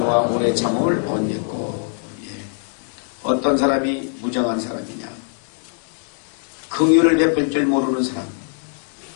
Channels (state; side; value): silent; right; 59 dB below the other